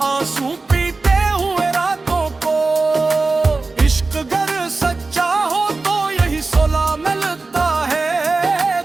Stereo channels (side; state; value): left; quieter; 3.7 dB